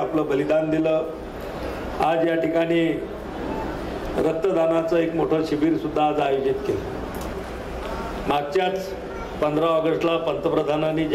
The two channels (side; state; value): both; identical; correlation 1.00